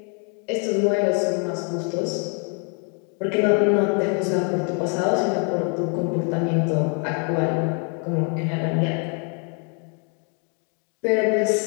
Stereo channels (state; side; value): quieter; right; 39.6 dB